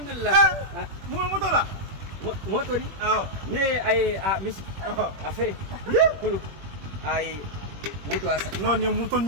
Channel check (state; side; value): late; left; 21 ms